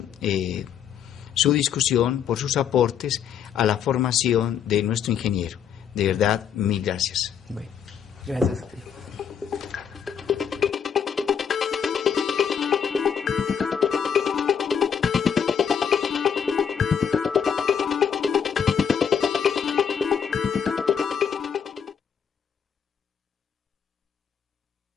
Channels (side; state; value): right; quieter; 7.7 dB